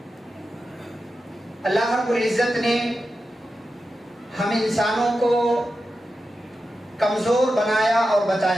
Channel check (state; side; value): normal; both; correlation 0.91